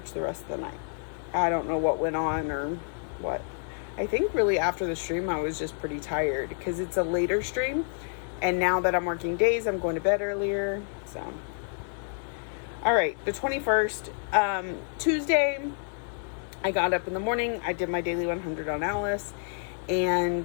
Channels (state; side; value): silent; right; 59 dB below the other